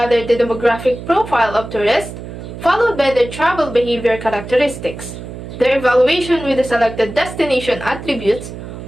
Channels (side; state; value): right; noise; hum, 11 dB below the sound